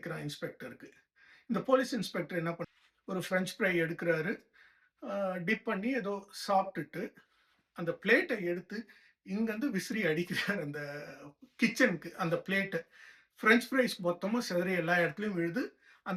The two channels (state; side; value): identical; both; correlation 1.00